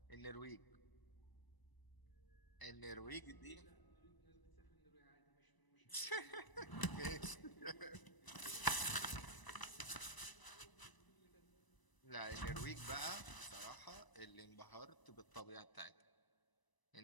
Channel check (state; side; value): late; right; 1.0 ms